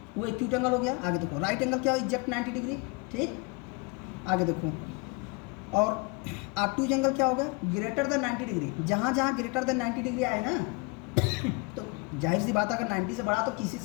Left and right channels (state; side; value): quieter; right; 29.4 dB